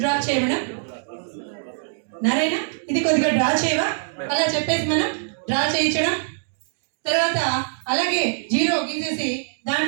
చేయడం. నారాయణ ఇది కొద్దిగా డ్రా చేయవా, అలా చెప్పేసి మనం డ్రా చేయించడం. తర్వాత అలాగే జీరో గీసేసి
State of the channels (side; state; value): left; silent; digital silence